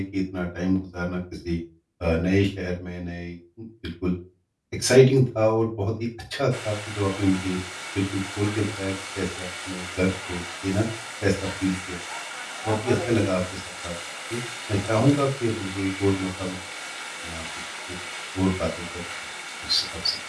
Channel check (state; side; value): identical; both; correlation 1.00